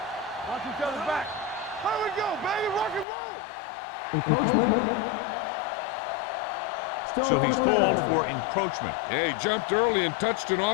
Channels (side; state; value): right; drops out; at 3.1 s